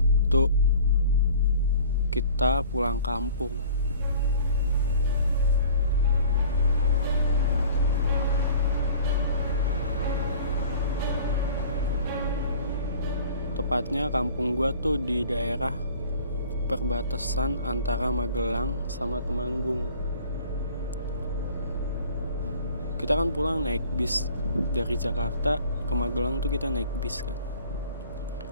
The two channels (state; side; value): inverted; both; correlation -0.47